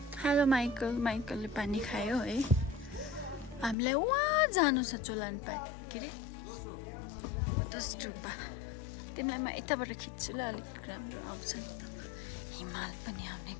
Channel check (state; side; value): drops out; right; at 3.8 s